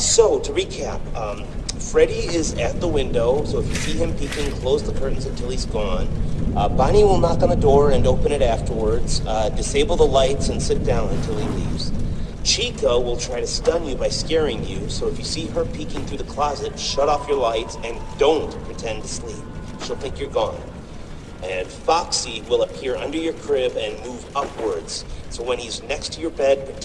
to recap, Freddy is at the window, so if you see him peeking, close the curtains until he's gone. Bonnie will knock on the door and open it afterwards. Disable the lights and sit down until he leaves. Chica will try to stun you by scaring you, so if you see her peeking through the closet, shut off your lights and don't pretend to sleep. She'll think you're gone. And Foxy will appear under your crib and move upwards, so when he's next to your bed,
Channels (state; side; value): identical; both; correlation 1.00